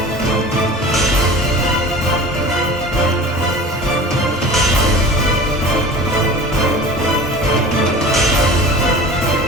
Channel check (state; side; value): normal; both; correlation 0.39